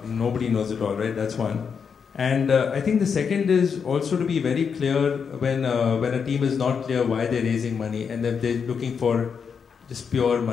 Nobody knows it all, right? That's one. And I think the second is also to be very clear when a team is not clear why they're raising money and that they're looking for just pure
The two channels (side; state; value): right; quieter; 6.4 dB